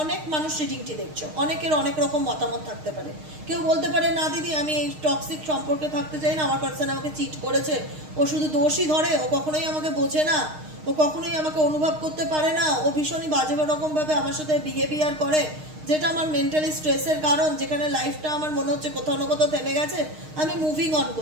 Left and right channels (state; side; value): late; left; 6.5 ms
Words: অনেক মানুষ রিডিংটি দেখছো, অনেকের অনেক রকম মতামত থাকতে পারে। কেউ বলতে পারে না দিদি আমি এই টক্সিক সম্পর্কে থাকতে চাই না, আমার পার্সন আমাকে চিট করেছে, ও শুধু দোষই ধরে, ও কখনোই আমাকে বোঝে না, ও কখনোই আমাকে অনুভব করতে পারে না, ও ভীষণই বাজে রকমভাবে আমার সাথে বিহেভিয়ার করে, যেটা আমার মেন্টালি স্ট্রেসের কারণ, যেখানে লাইফটা আমার মনে হচ্ছে কোথাও না কোথাও থেমে গেছে, আমি মুভিং অন